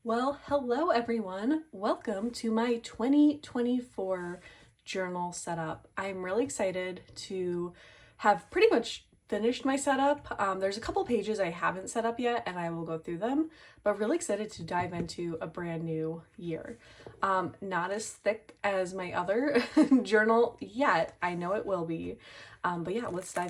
Well, hello everyone. Welcome to my 2024 journal setup. I'm really excited to have pretty much finished my setup. There's a couple pages I haven't set up yet and I will go through them, but really excited to dive into a brand new year. Not as thick as my other journal yet. I know it will be, but yeah, let's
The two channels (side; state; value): both; identical; correlation 1.00